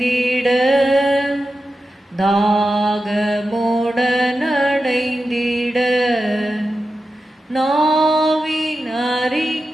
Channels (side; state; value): both; normal; correlation 0.91